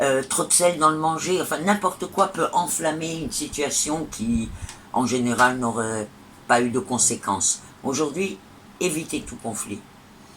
trop de sel dans le manger, enfin n'importe quoi peut enflammer une situation qui, en général, n'aurait pas eu de conséquences. Aujourd'hui, évitez tout conflit.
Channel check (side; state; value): both; identical; correlation 1.00